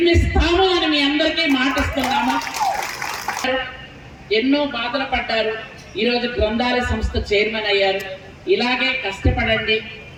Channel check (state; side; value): identical; both; correlation 1.00